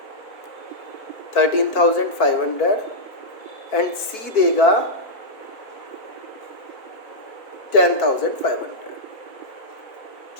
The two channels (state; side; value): late; right; 4.5 ms